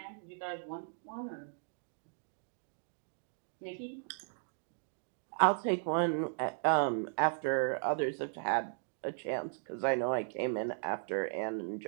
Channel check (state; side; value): silent; left; digital silence